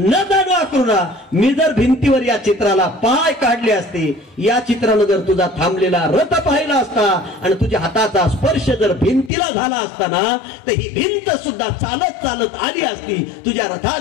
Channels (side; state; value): right; drops out; at 9.3 s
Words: जाणू आक्रोडा मी जर भिंतीवर या चित्राला पाय काढले असते, या चित्रानं जर तुझा थांबलेला रथ पाहिला असता आणि तुझ्या हाताचा स्पर्श जर भिंतीला झाला असताना तर ही भिंत सुद्धा चालत चालत आली असती, तुझ्या रथात